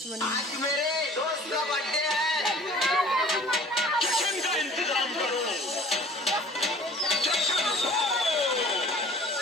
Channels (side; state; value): both; normal; correlation 0.49